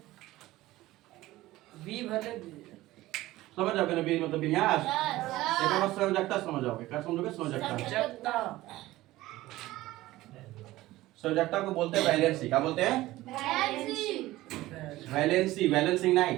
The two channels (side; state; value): left; quieter; 17.1 dB